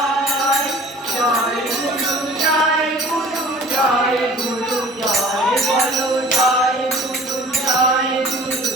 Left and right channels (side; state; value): both; normal; correlation 0.47